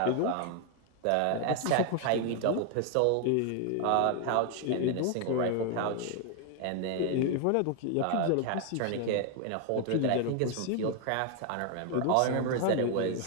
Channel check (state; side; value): different; both; correlation 0.00